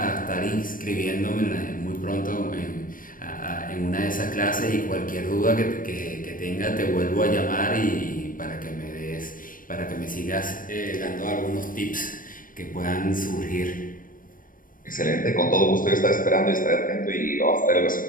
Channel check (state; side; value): late; right; 0.40 ms